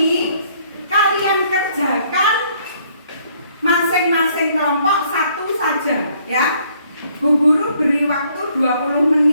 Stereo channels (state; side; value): inverted; both; correlation -0.65